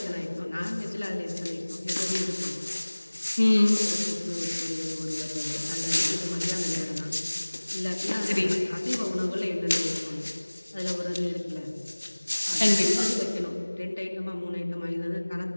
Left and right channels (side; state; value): both; inverted; correlation -1.00